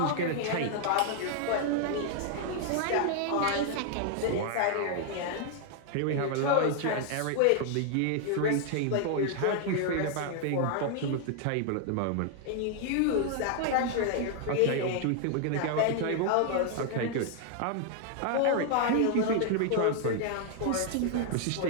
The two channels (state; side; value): different; both; correlation 0.00